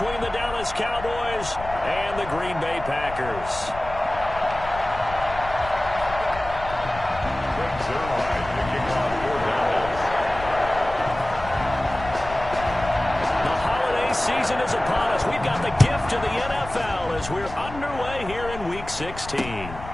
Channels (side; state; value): left; noise; rumble, 12 dB below the sound